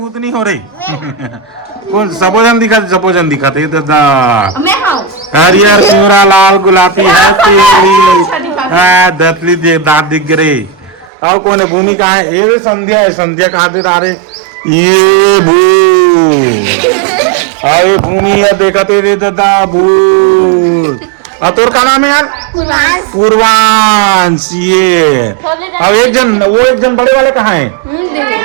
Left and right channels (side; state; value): left; drops out; at 11.1 s